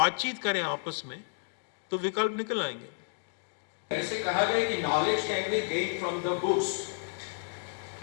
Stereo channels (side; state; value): right; silent; digital silence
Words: करें आपस में तो विकल्प निकल आएंगे। ऐसे कहा गया कि knowledge can be gained from the books,